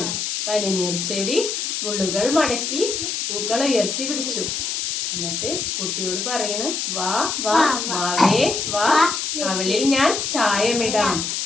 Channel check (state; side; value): noise; left; hiss, 2 dB below the sound